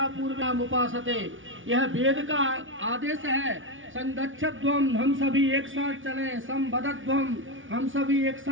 पूर्व्याम उपासते। यह वेद का आदेश है। संगच्छध्वम हम सभी एक साथ चलें, संभरध्वम हम सभी एक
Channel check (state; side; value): late; left; 0.57 ms